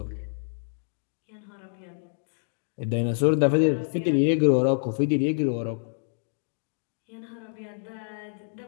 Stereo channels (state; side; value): silent; right; digital silence